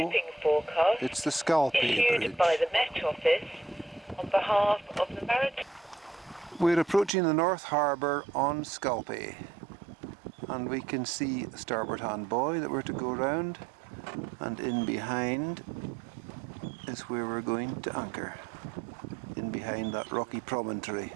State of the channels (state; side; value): drops out; left; at 7.1 s